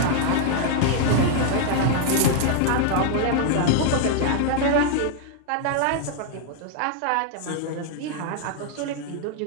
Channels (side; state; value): both; different; correlation 0.00